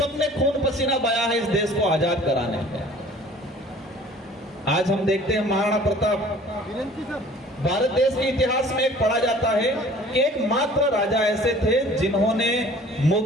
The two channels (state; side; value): normal; both; correlation 0.49